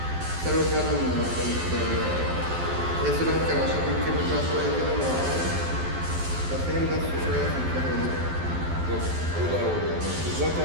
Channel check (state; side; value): late; left; 12 ms